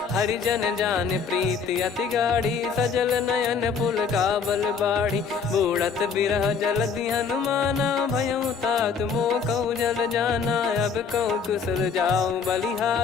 हरिजन जान प्रीति अति गाढ़ी, सजल नयन पुल काबल बाढ़ी। बूढ़त बिरह जलधि हनुमाना, भयउ तात मोह कहु जल जाना। अब कहु कुशल जाऊं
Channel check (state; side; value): quieter; right; 5.8 dB